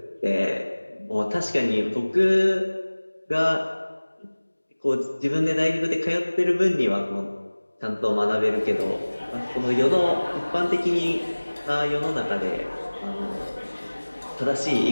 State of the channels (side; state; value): both; inverted; correlation -1.00